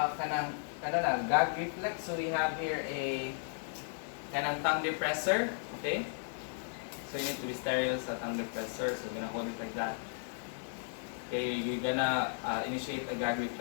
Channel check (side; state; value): right; silent; digital silence